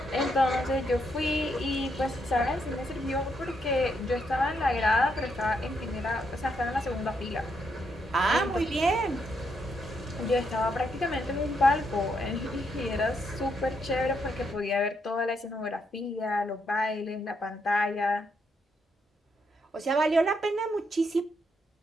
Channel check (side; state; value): both; normal; correlation 0.77